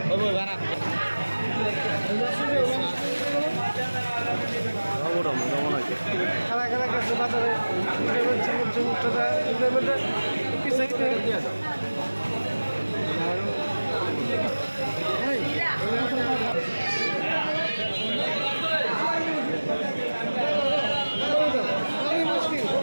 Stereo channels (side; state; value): both; inverted; correlation -1.00